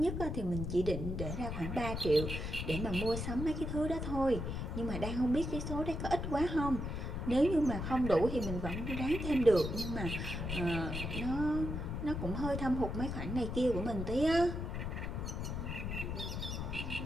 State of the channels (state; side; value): noise; left; rumble, 4 dB below the sound